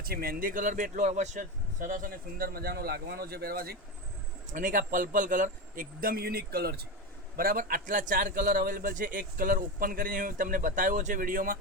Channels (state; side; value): normal; both; correlation 0.18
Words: મહેંદી કલર બી એટલો અવશ્ય સરસ અને સુંદર મજાનો લાગવાનો છે પહેરવાથી. અને એક આ પર્પલ કલર એકદમ યુનિક કલર છે. બરાબર, આટલા 4 કલર અવેલેબલ છે. એક કલર ઓપન કરીને હું તમને બતાવ્યો છે વિડીયોમાં.